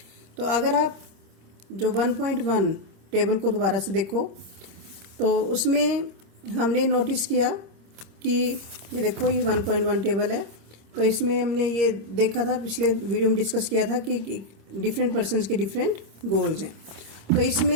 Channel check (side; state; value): left; late; 26 ms